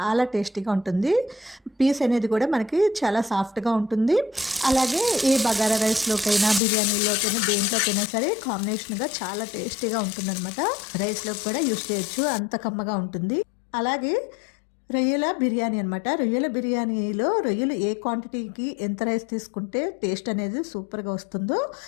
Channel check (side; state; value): right; drops out; at 6.6 s